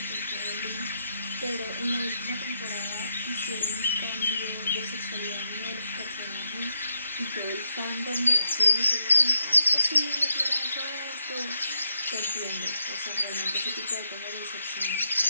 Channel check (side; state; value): both; inverted; correlation -0.81